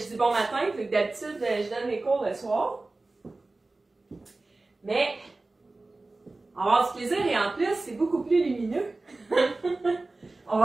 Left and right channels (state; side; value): quieter; left; 3.2 dB